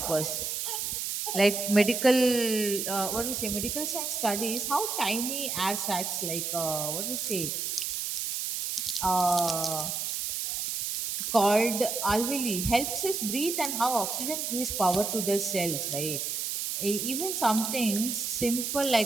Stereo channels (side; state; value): right; noise; hiss, 2 dB below the sound